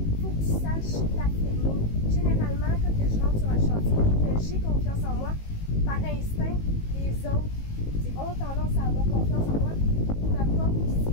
faut que tu saches t'affirmer. Généralement, quand je rentre sur un chantier et que j'ai confiance en moi, par instinct, les autres ont tendance à avoir confiance en moi. Ils m'apportent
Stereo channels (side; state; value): right; late; 19 ms